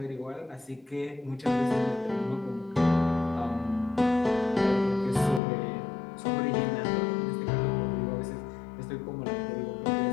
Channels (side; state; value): right; drops out; at 5.4 s